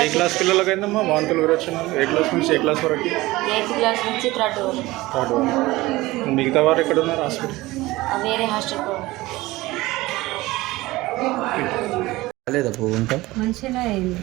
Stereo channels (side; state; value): left; quieter; 19.3 dB